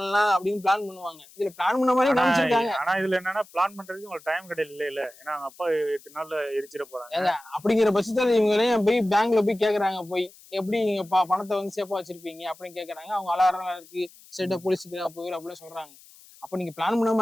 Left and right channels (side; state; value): left; noise; hiss, 24 dB below the sound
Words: அப்படின்னு பிளான் பண்ணுவாங்க. இதுல பிளான் பண்ண மாதிரி காமிச்சிருக்காங்க. ஆனா இதுல என்னன்னா பிளான் பண்றதுக்கு உங்களுக்கு டைம் கிடையாது இல்ல. ஏன்னா அவங்க அப்பா 8 நாள்ல எரிச்சிட போறாங்க. அப்படிங்கிற பட்சத்துல இவங்களையும் போய் பேங்க்ல போய் கேக்குறாங்க, போய் எப்படி நீங்க பணத்தை வந்து சேஃபா வச்சிருப்பீங்க அப்படின்னு கேக்குறாங்க. அவங்க அலாரம் இருக்கு, ஸ்டேட்டா போலீஸுக்கு போயிரு அப்படின்னு சொல்றாங்க. அப்ப நீங்க பிளான் பண்ண